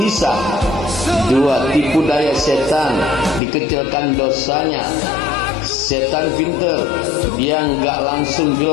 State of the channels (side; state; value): right; drops out; at 3.4 s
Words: 2, tipu daya setan, dikecilkan dosanya. Setan pinter, dia enggak langsung